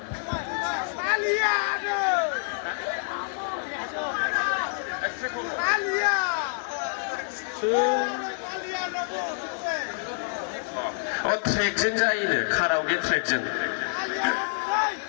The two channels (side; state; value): right; silent; digital silence